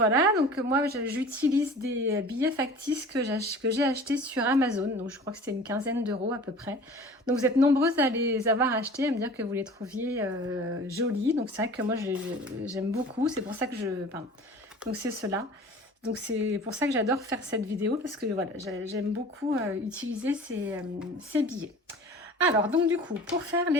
donc moi j'utilise des billets factices que j'ai achetés sur Amazon, donc je crois que c'était une quinzaine d'euros à peu près. Donc vous êtes nombreuses à les avoir achetés, à me dire que vous les trouviez jolis, donc c'est vrai que moi j'aime beaucoup, c'est pour ça que donc c'est cela. Donc c'est pour ça que j'adore faire cette vidéo, parce que voilà, j'aime beaucoup utiliser ces billets. Alors donc du coup, pour faire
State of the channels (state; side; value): normal; both; correlation 0.42